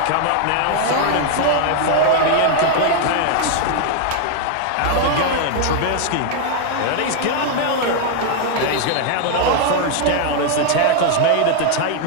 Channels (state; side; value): different; both; correlation 0.00